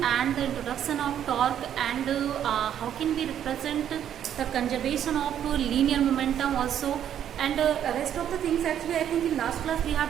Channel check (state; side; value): quieter; left; 9.9 dB